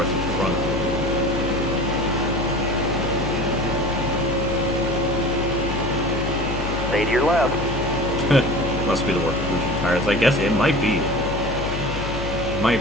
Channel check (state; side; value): noise; left; hum, 6 dB below the sound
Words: in front of them. Stay to your left. Must be the work of losing tires. I guess it might be. It might